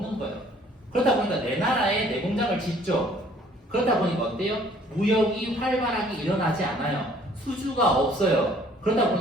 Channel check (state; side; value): normal; both; correlation 0.58